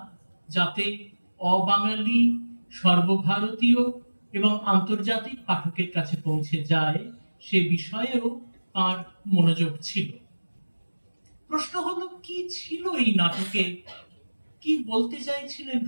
যাতে অবাঙালি, সর্বভারতীয় এবং আন্তর্জাতিক পাঠকের কাছে পৌঁছে যায়, সে বিষয়েও তার মনোযোগ ছিল। প্রশ্ন হলো, কি ছিল এই নাটকে, কি বলতে চাইছিলেন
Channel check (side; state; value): both; inverted; correlation -1.00